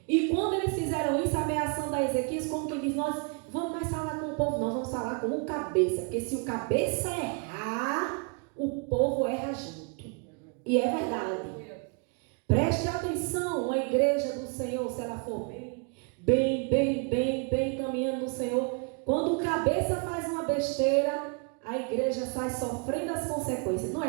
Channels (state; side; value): quieter; left; 36.2 dB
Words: E quando eles fizeram isso, ameaçando a Ezequias, como que diz: nós vamos mais falar com o povo, não, vamos falar com o cabeça. Porque se o cabeça errar, o povo erra junto. E é verdade. Preste atenção, a igreja do Senhor, se ela for bem caminhando no Senhor, quando o cabeça faz uma besteira, a igreja sai sofrendo as consequências. Não